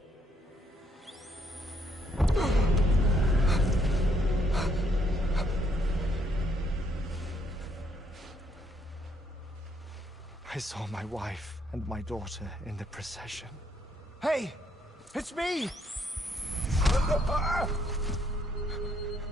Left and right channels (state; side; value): normal; both; correlation 0.71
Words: I saw my wife and my daughter in the procession. Hey! It's me!